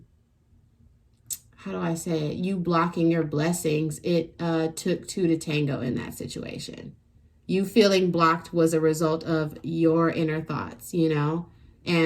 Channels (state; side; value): identical; both; correlation 1.00